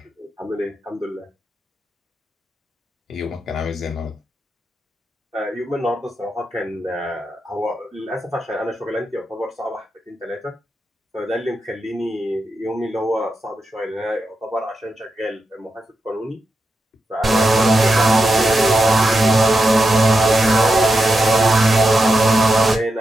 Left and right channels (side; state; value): both; normal; correlation 0.87